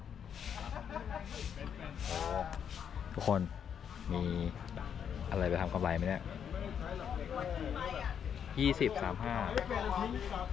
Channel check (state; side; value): quieter; right; 8.1 dB